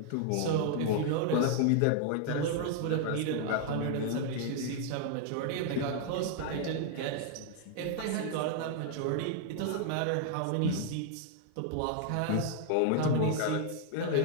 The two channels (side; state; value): both; different; correlation 0.00